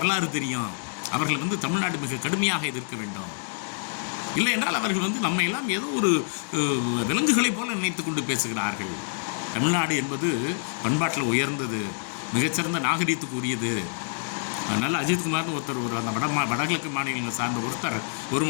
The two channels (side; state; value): right; silent; 60 dB below the other